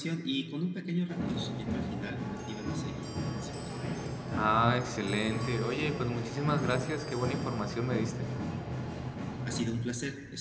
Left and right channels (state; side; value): identical; both; correlation 1.00